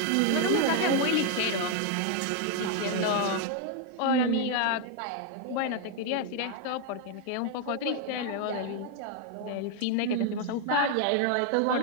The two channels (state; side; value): different; both; correlation 0.00